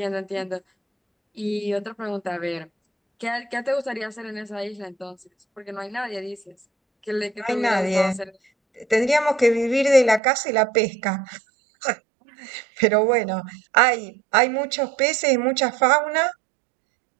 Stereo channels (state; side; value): drops out; left; at 10.2 s